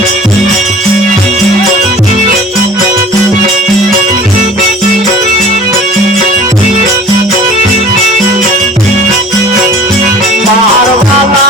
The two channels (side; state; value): both; normal; correlation 0.45